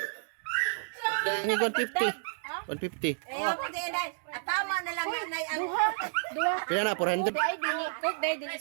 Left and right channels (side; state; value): left; silent; digital silence